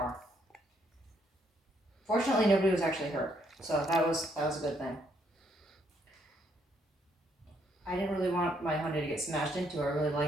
Fortunately, nobody was actually hurt, so that was a good thing. I didn't really want my Hyundai to get smashed into. I really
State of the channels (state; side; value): normal; both; correlation 0.71